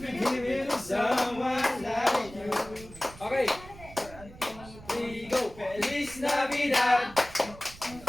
give it to someone like you. Okay. We go. Feliz Navidad.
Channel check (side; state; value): right; noise; rumble, 18 dB below the sound